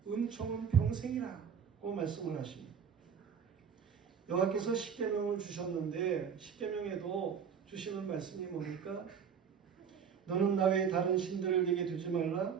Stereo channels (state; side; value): quieter; left; 7.2 dB